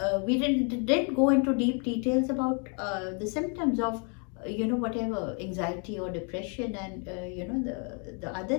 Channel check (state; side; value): quieter; right; 38.3 dB